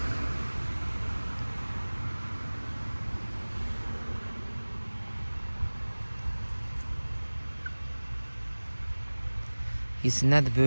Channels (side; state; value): both; inverted; correlation -1.00